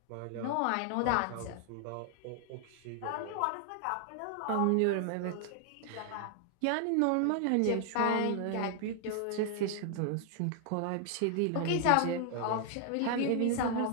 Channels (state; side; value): different; both; correlation 0.00